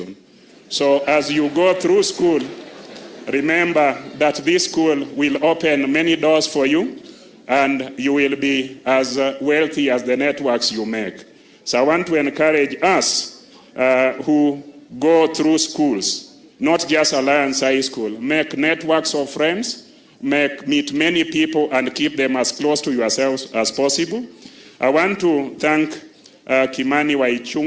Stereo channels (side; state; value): both; identical; correlation 1.00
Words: So as you go through school, remember that this school will open many doors for you, and you will be as wealthy as the networks you make. So I want to encourage us who go through schools, not just Alliance High School, make networks of friends, meet many people and keep them as close to yourselves as possible. I want to thank Kimani